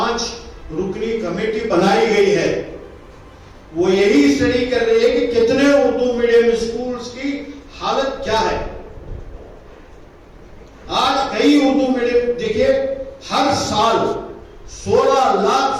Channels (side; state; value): both; identical; correlation 1.00